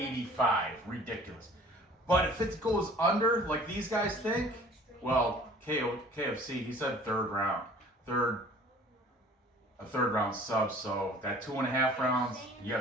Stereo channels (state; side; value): normal; both; correlation 0.49